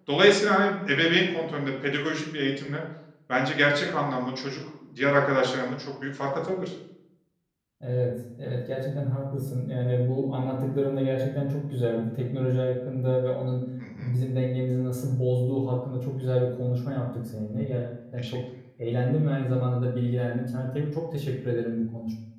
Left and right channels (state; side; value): identical; both; correlation 1.00